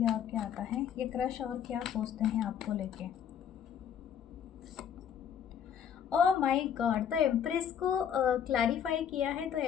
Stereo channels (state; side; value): quieter; right; 8.5 dB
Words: और क्या आता है। ये क्रश और क्या सोचते हैं आपको लेके। ओह माय गॉड, तो एम्प्रेस को क्लैरिफाई किया है, तो